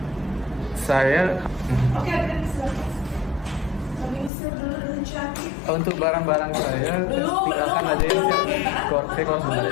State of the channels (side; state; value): right; drops out; at 4.3 s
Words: Saya Oke, untuk barang-barang saya tinggalkan aja ya. Saya kalau